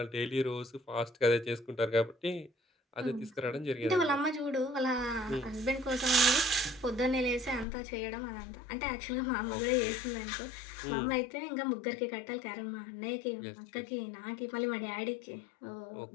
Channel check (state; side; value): drops out; right; at 7.7 s